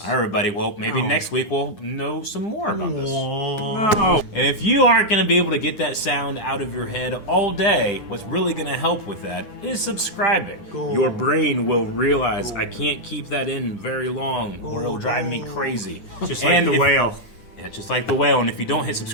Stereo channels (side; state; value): right; late; 9.8 ms